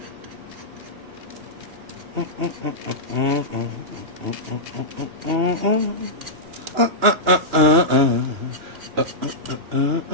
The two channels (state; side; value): late; left; 2.8 ms